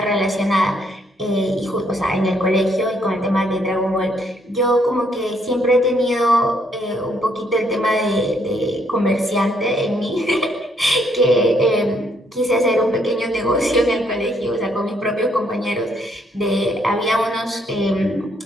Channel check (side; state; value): both; normal; correlation 0.70